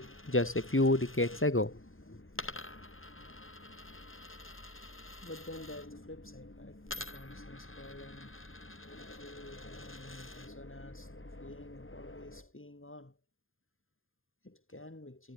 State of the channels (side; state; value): right; late; 0.59 ms